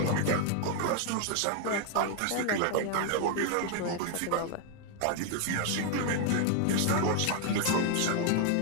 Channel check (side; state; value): both; different; correlation 0.01